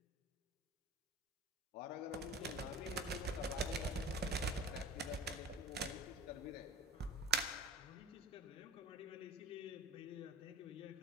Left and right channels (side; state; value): both; normal; correlation 0.37